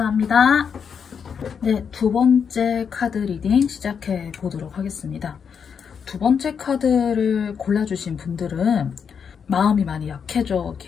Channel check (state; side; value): quieter; right; 6.8 dB